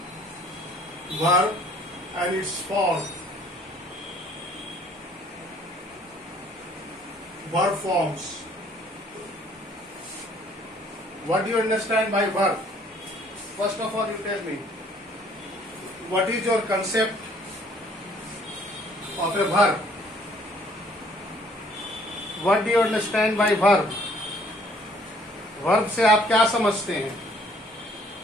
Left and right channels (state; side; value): normal; both; correlation 0.60